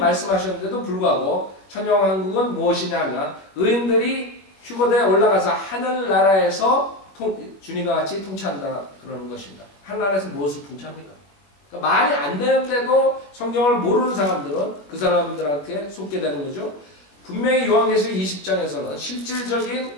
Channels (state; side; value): late; right; 21 ms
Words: 불구하고 천녀왕국은 무엇이냐면 의인들이 휴거대에 올라가서 하늘나라에서 주님과 같이 통치한다 그러는 것입니다. 하늘나라에서 무엇을 통치합니까? 그러니까 말이 안 되는데도 성경을 모르는 사람들은 그 사람들한테 속게 되는 거죠. 분명히 요한계시록 20장에서는